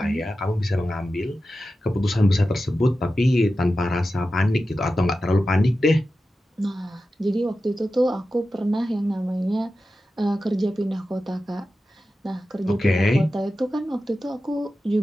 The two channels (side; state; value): both; normal; correlation 0.92